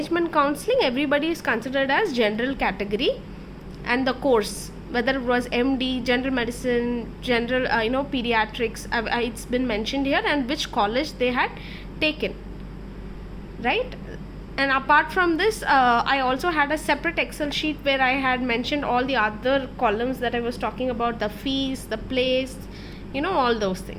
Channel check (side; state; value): both; identical; correlation 1.00